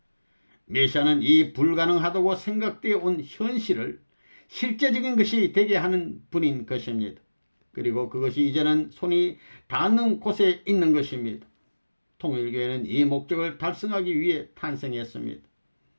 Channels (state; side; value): inverted; both; correlation -1.00